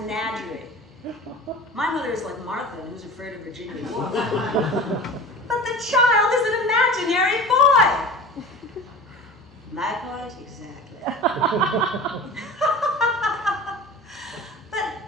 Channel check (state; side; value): normal; both; correlation 0.37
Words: My mother is like Martha, who's afraid of Virginia Woolf. But the child is an imaginary boy. My point, exactly.